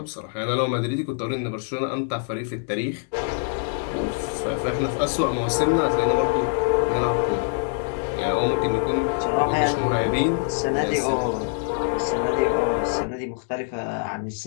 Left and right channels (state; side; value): silent; right; digital silence